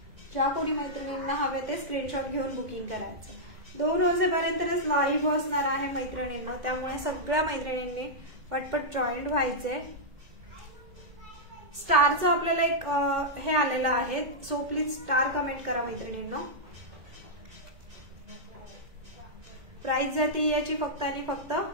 ज्या कोणी मैत्रिणींना हवे ते स्क्रीनशॉट घेऊन बुकिंग करायचं. 2 वाजेपर्यंतच लाईव्ह असणार आहे मैत्रिणींना. त्यामुळे सगळ्या मैत्रिणींनी पटपट जॉईन व्हायचे. स्टारचं आपल्याला एक हे आलेलं आहे. सो प्लीज स्टार कमेंट करा मैत्रिणींना. प्राइस जाते याची फक्त आणि फक्त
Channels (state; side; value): late; left; 2.0 ms